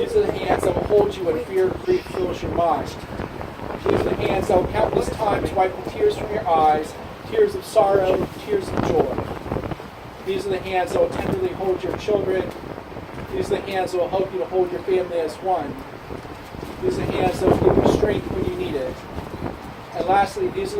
are the hands that will hold you when fear and grief fills your mind. These are the hands that will countless times wipe the tears from your eyes, tears of sorrow, tears of joy. These are the hands that will tenderly hold your children. These are the hands that will help you to hold your family as one. These are the hands that will give you strength when you need it. And lastly, these are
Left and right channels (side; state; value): both; identical; correlation 1.00